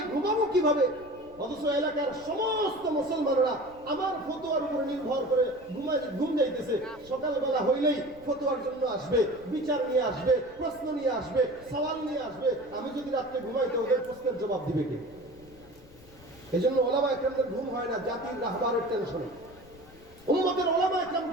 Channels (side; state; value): left; noise; rumble, 23 dB below the sound